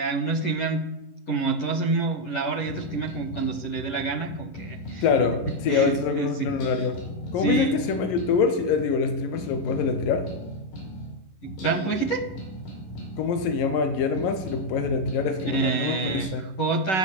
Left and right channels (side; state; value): right; late; 11 ms